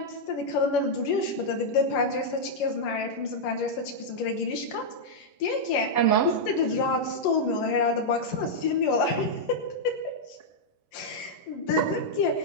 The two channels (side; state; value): right; late; 11 ms